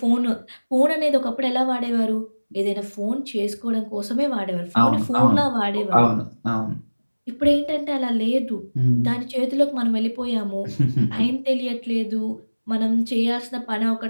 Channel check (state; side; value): inverted; both; correlation -1.00